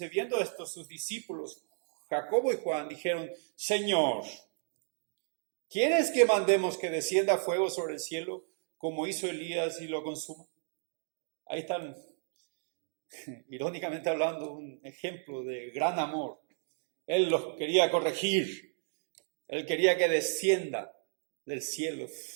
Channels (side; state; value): left; silent; digital silence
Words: viendo esto sus discípulos, Jacobo y Juan, dijeron, Señor, ¿quieres que mandemos que descienda fuego sobre el cielo, como hizo Elías y lo consuma? Ahí están, irónicamente hablando, un ejemplo de gran amor. Él los quería corregir. Él quería que descienda del cielo